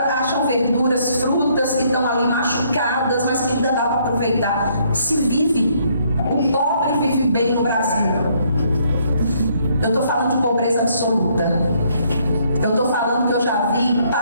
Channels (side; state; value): both; inverted; correlation -0.68